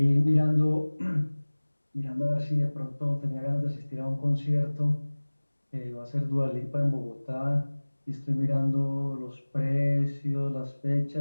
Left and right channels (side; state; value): both; inverted; correlation -1.00